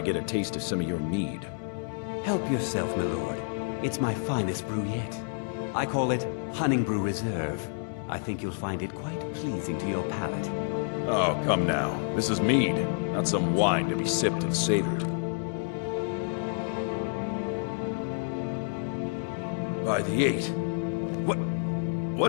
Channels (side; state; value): right; silent; digital silence